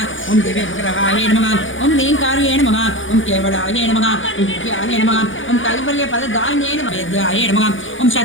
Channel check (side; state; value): right; late; 0.57 ms